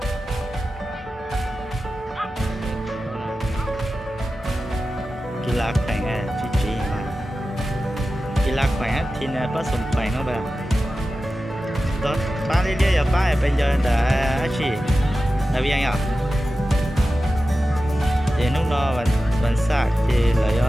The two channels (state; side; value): normal; both; correlation 0.94